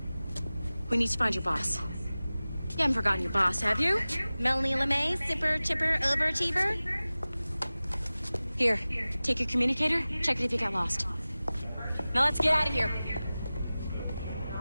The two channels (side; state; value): both; inverted; correlation -0.97